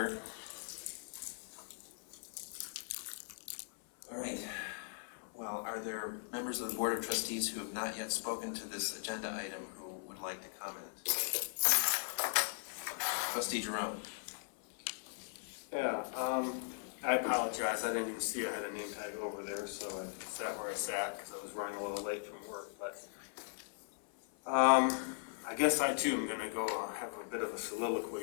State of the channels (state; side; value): silent; right; 52 dB below the other